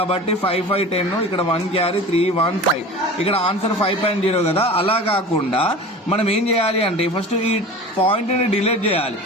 5-5 10, ఇక్కడ 1 క్యారీ 3-1-5, ఇక్కడ ఆన్సర్ 5.0 కదా. అలా కాకుండా మనం ఏం చేయాలి అంటే ఫస్ట్ ఈ పాయింట్ ని డిలీట్ చేయాలి.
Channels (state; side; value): normal; both; correlation 0.36